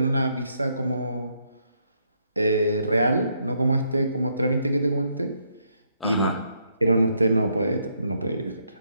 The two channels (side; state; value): both; inverted; correlation -0.75